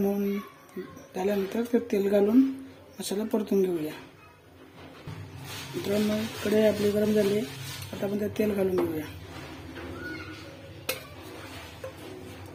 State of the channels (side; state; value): both; identical; correlation 1.00